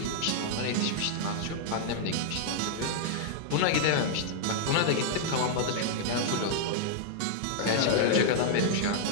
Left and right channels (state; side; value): different; both; correlation -0.01